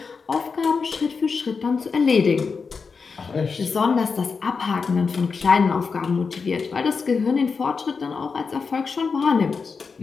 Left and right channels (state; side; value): quieter; right; 5.1 dB